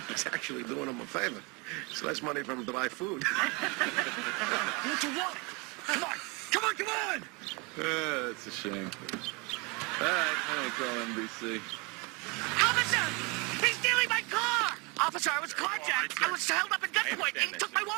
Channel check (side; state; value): left; quieter; 29.0 dB